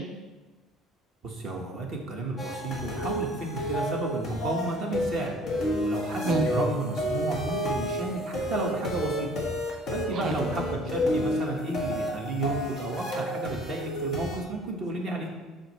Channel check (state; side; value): normal; both; correlation 0.52